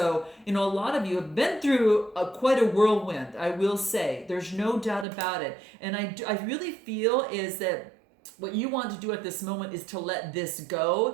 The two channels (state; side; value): drops out; left; at 5.1 s